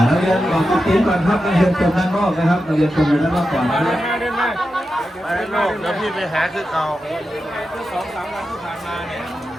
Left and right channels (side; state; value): both; normal; correlation 0.90